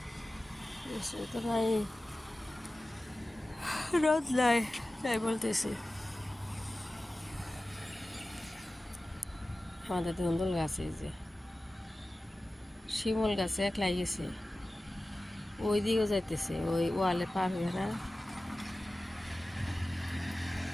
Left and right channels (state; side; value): normal; both; correlation 0.96